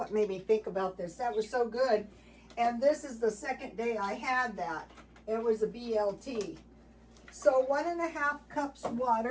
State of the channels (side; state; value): both; identical; correlation 1.00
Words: made me think about this. That was so good. And this is the second day I had that. It was a BLT. So 1.5 cups